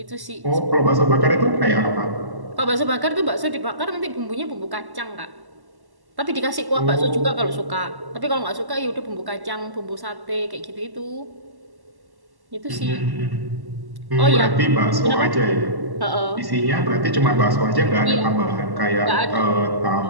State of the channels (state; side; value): late; left; 1.1 ms